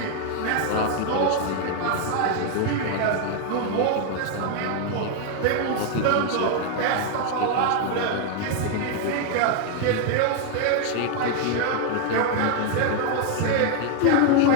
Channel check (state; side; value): different; both; correlation 0.00